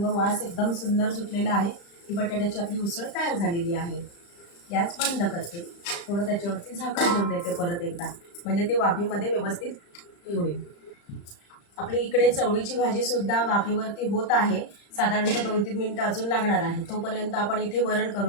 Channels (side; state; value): right; late; 35 ms